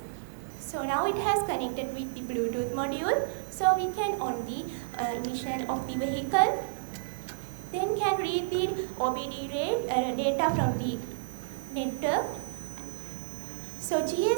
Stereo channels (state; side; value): silent; left; digital silence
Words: So now it has connected with the Bluetooth module. So we can on the ignition of the vehicle, then can read the OBD data from the network. So